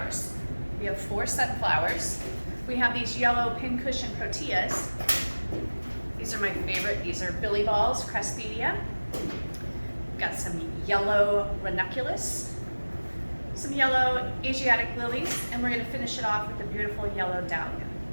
We have 4 sunflowers. We have these yellow pincushion proteas. These are my favorite. These are billy balls, cresspedia. Got some yellow ranuculus, some yellow asiatic lilies, and we're going to finish it off with a beautiful yellow dahlia.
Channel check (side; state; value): both; inverted; correlation -1.00